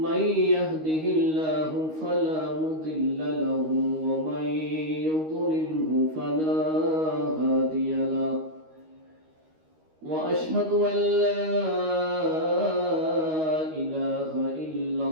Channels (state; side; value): late; left; 13 ms